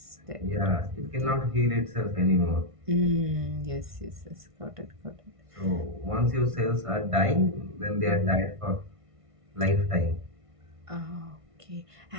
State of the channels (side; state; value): left; late; 1.5 ms